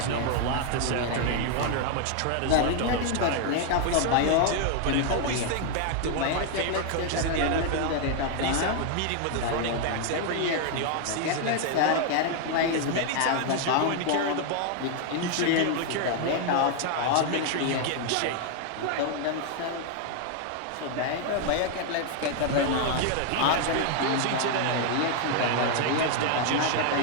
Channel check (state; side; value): different; both; correlation 0.00